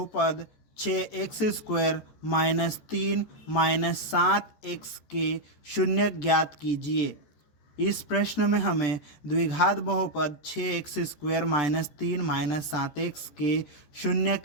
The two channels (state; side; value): late; right; 13 ms